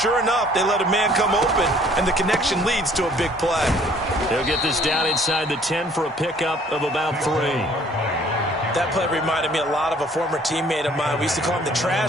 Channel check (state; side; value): normal; both; correlation 0.57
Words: enough, they let a man come open, and the connection leads to a big play. They'll get this down inside the 10 for a pickup of about 3. That play reminded me a lot of a former teammate of mine. We used to call him the